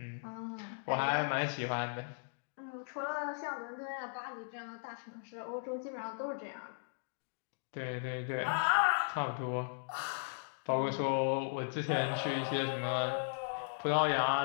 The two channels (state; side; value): silent; right; digital silence